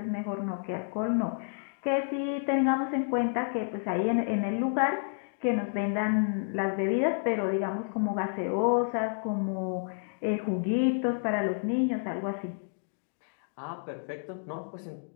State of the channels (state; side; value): silent; right; digital silence